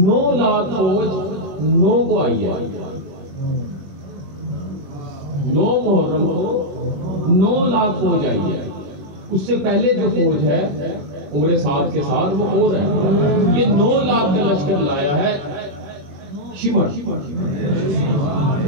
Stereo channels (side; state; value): left; late; 21 ms